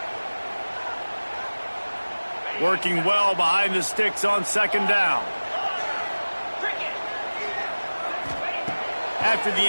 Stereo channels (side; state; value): both; inverted; correlation -1.00